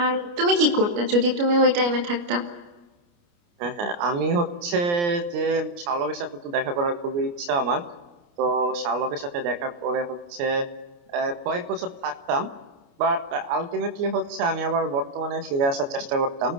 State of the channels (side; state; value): left; late; 29 ms